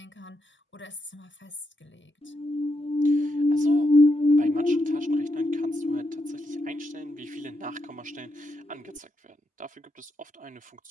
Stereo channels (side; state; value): both; normal; correlation 0.82